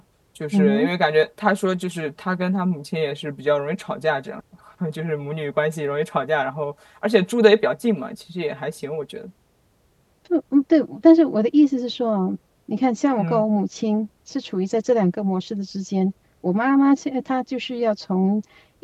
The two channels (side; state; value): both; identical; correlation 1.00